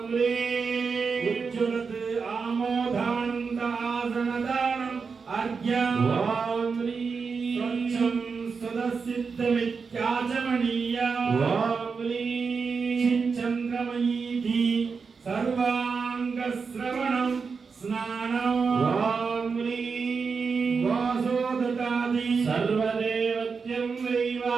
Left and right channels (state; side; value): quieter; left; 5.2 dB